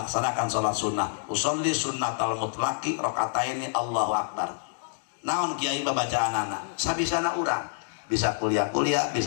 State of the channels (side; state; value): right; silent; digital silence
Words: salat sunnah. Usolli sunnatal mutlaqi rakaataini Allahu akbar. Naon kiai babacaanana? Sabisana urang bisa kuliah